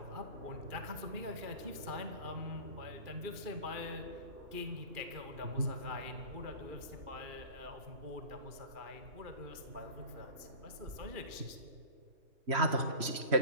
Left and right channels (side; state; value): left; late; 2.4 ms